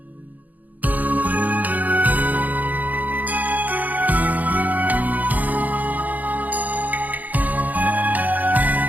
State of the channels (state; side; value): late; left; 0.080 ms